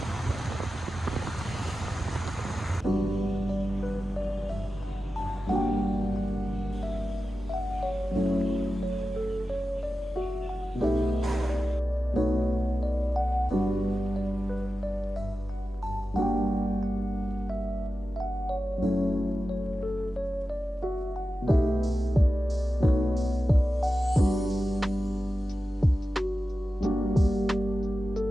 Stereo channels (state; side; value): normal; both; correlation 0.93